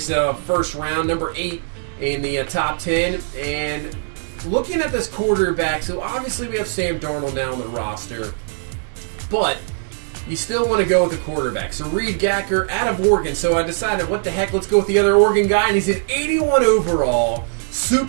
first round, number 8 in the top 10. And looking at this quarterback, so obviously we have Sam Darnold now on the roster. But you still want to go with the quarterback. So Reed Gacker out of Oregon. So I decided, what the heck, let's go with the other Oregon guy. And he's an 81 overall,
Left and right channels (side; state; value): left; silent; digital silence